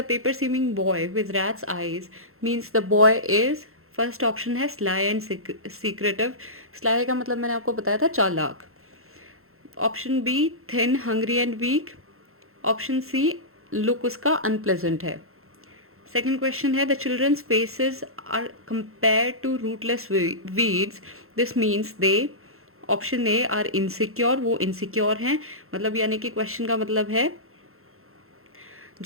paper seeming boy with rat's eyes means the boy is. First option है स्लाई एंड सीक्रेटिव। स्लाई का मतलब मैंने आपको बताया था चालाक। Option B thin hungry and weak. Option C look उसका अनप्लेजेंट है। सेकेंड क्वेश्चन है the children's faces are compare to rootless weeds this means they. Option A are insecure, वो इनसिक्योर हैं, मतलब यानी कि क्वेश्चन का मतलब है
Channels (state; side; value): late; left; 0.62 ms